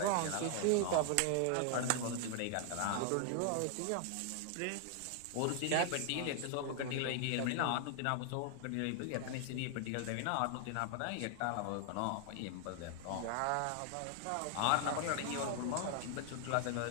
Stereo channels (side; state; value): both; different; correlation 0.00